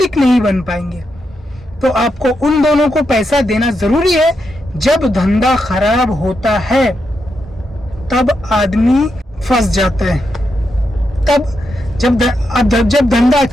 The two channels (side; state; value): both; normal; correlation 0.84